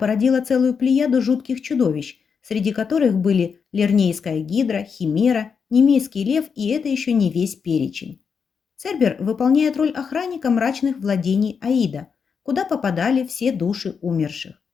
целую плеяду жутких чудовищ, среди которых были Лернейская гидра, химера, немейский лев, и это еще не весь перечень. Цербер выполняет роль охранника мрачных владений Аида, куда попадали все души умерших.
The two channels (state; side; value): quieter; right; 6.1 dB